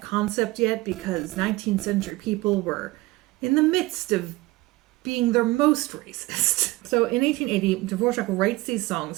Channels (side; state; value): left; quieter; 20.2 dB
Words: concept yet because 19th century people were in the midst of being their most racist. So in 1880, Dvorak writes these